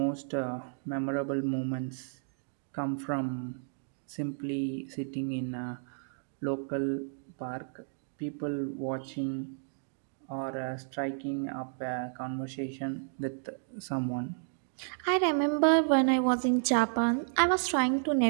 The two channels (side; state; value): left; silent; digital silence